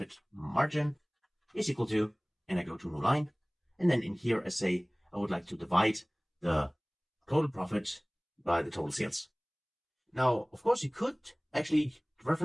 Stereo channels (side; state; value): both; identical; correlation 1.00